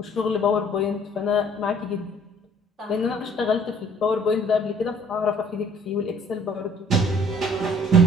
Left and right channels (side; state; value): both; normal; correlation 0.57